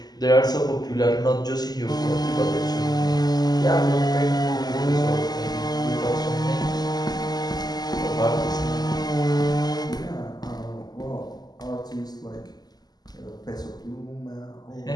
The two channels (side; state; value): right; late; 0.20 ms